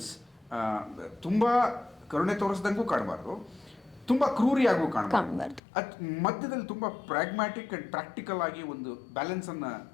ತುಂಬ ಕರುಣೆ ತೋರಿಸ್ದಂಗೂ ಕಾಣಬಾರ್ದು, ತುಂಬ ಕ್ರೂರಿಯಾಗೂ ಕಾಣಬಾರ್ದು. ಮಧ್ಯದಲ್ಲಿ ತುಂಬ ಪ್ರಾಗ್ಮ್ಯಾಟಿಕ್ ಆ್ಯಂಡ್ ಪ್ರಾಕ್ಟಿಕಲ್ ಆಗಿ ಒಂದು ಬ್ಯಾಲೆನ್ಸನ್ನು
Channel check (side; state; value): right; drops out; at 5.6 s